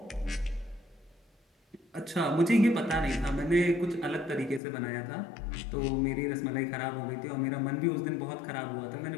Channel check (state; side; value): drops out; right; at 4.6 s